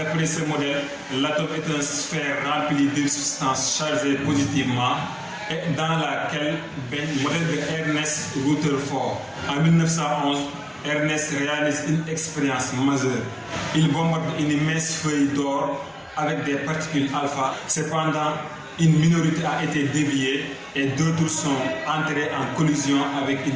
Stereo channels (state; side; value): identical; both; correlation 1.00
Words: ce modèle, l'atome est une sphère remplie de substances chargées positivement et dans laquelle baigne le modèle de Ernest Rutherford. En 1911, Ernest réalise une expérience majeure. Il bombarde une immense feuille d'or avec des particules alpha. Cependant, une minorité a été déviée et d'autres sont entrées en collision avec